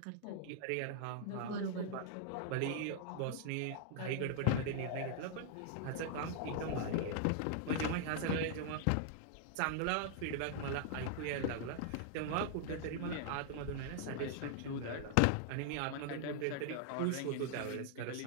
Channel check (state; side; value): different; both; correlation 0.00